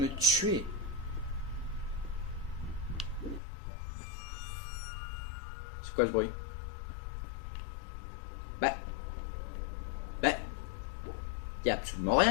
me tuer. C'est quoi ce bruit? Y a absolument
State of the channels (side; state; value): right; drops out; at 3.4 s